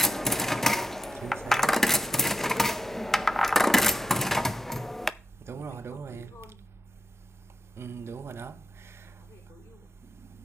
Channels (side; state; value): both; normal; correlation 0.87